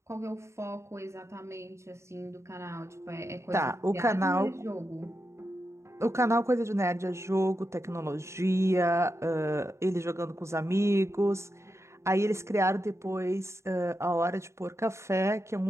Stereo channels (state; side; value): late; left; 0.14 ms